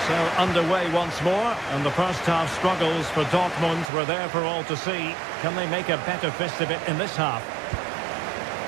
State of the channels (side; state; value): left; drops out; at 3.9 s